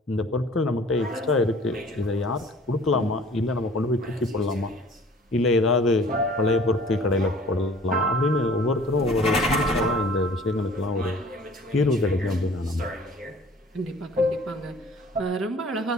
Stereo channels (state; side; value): normal; both; correlation 0.50